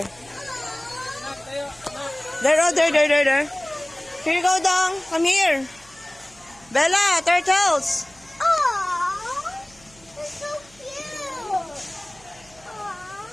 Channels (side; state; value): right; noise; hum, 27 dB below the sound